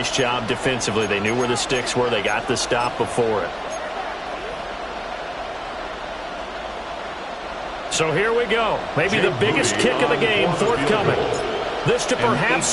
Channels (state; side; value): identical; both; correlation 1.00